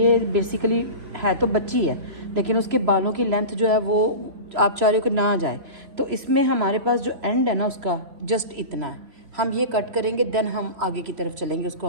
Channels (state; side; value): late; left; 3.0 ms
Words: बेसिकली है तो बच्ची है, लेकिन उसके बालों की लेंथ जो है वो आप चाह रहे हो कि ना जाए, तो इसमें हमारे पास जो एंड है ना उसका जस्ट इतना है। हम ये कट करेंगे, देन हम आगे की तरफ चलेंगे। उसको